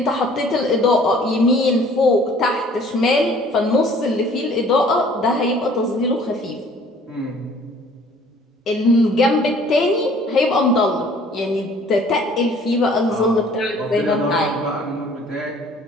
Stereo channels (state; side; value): normal; both; correlation 0.54